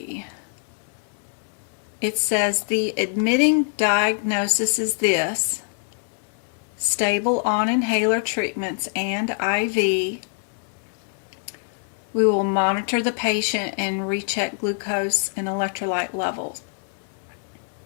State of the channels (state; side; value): silent; right; 56 dB below the other